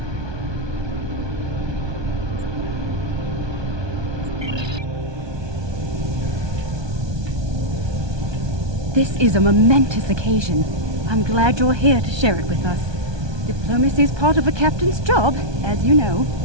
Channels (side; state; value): left; late; 1.2 ms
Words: This is a momentous occasion. I'm glad you're here to share it with us. Diplomacy is part of a captain's job, as you know.